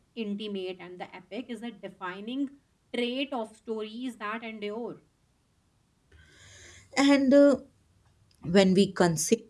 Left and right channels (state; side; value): identical; both; correlation 1.00